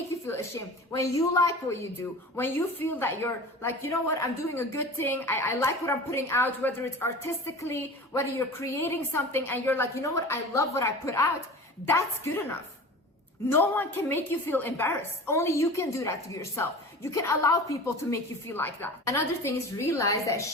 you feel ashamed. When you like what you do, when you feel that you're like, you know what, I'm doing a good thing. I like what I'm putting out, whether it's artistically, whether you're creating something and you're like, you know what, I love what I put out. That's good enough. No one can make you feel embarrassed. Only you can do that to yourself. You can allow people to make you feel like that. Another thing is realize that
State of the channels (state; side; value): normal; both; correlation 0.36